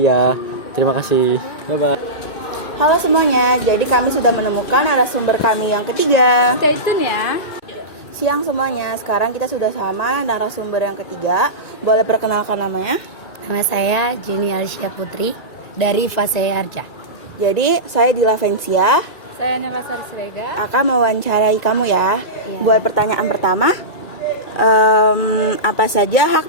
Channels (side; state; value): right; late; 1.9 ms